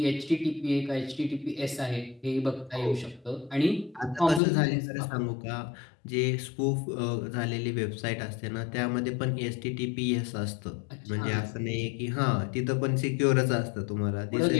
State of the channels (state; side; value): drops out; right; at 4.4 s